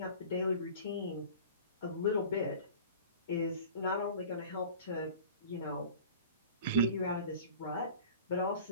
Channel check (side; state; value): both; inverted; correlation -0.40